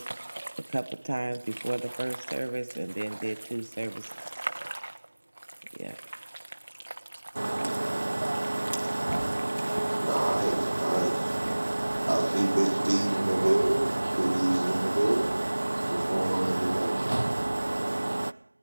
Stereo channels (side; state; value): both; inverted; correlation -1.00